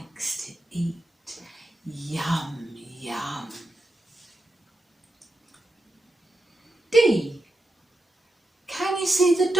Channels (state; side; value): normal; both; correlation 0.88